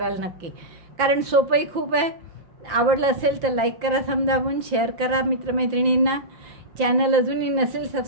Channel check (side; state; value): left; late; 5.8 ms